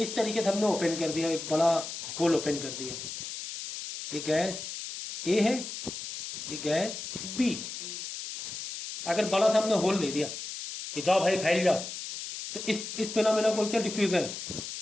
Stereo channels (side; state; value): left; noise; hiss, 8 dB below the sound